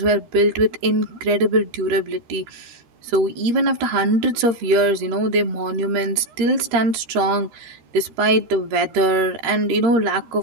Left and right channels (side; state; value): left; late; 13 ms